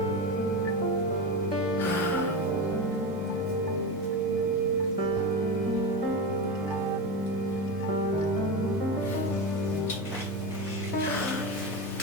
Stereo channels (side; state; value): both; normal; correlation 0.19